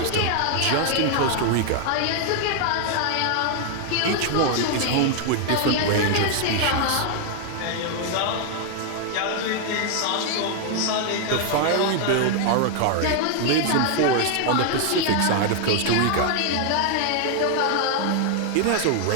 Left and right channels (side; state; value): both; different; correlation 0.00